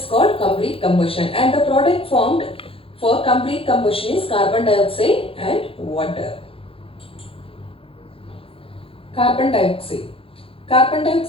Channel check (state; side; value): late; right; 0.27 ms